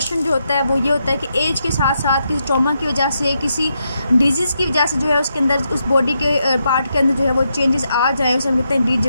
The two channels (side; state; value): both; inverted; correlation -0.82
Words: जो होता है वो ये होता है कि एज के साथ साथ किसी ट्रॉमा की वजह से, किसी डिजीज़ की वजह से जो है उसके अंदर, उस बॉडी के पार्ट के अंदर जो है वो चेंजेस आ जाएँ, उसे हम कहते हैं